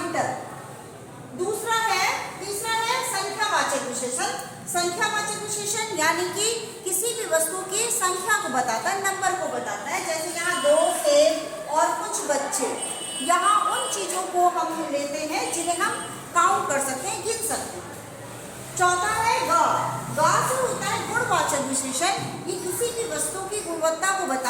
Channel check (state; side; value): identical; both; correlation 1.00